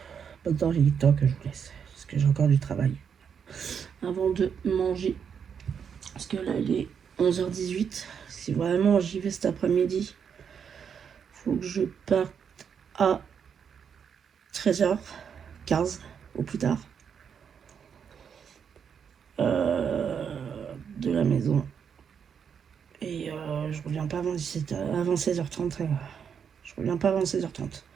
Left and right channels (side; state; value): left; quieter; 7.2 dB